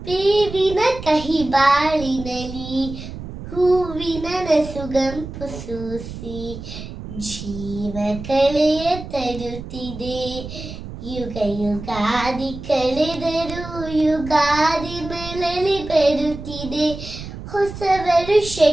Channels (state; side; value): noise; right; rumble, 11 dB below the sound